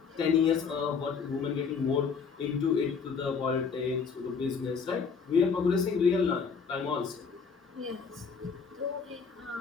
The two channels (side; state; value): right; quieter; 5.7 dB